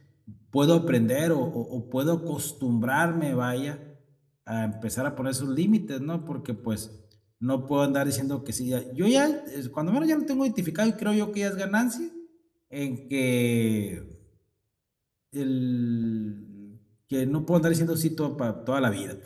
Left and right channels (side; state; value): both; identical; correlation 1.00